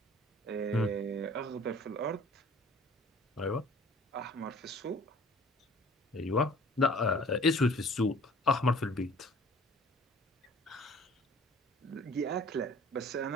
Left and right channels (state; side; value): normal; both; correlation 0.50